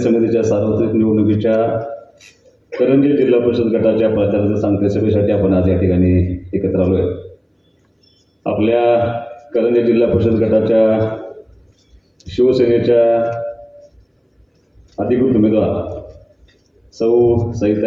सार्वत्रिक निवडणुकीच्या करंजी जिल्हा परिषद गटाच्या प्रचाराच्या सांगते सभेसाठी आपण आज या ठिकाणी एकत्र आलो आहे। आपल्या करंजी जिल्हा परिषद गटाच्या शिवसेनेच्या अधिकृत उमेदवार सौ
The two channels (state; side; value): identical; both; correlation 1.00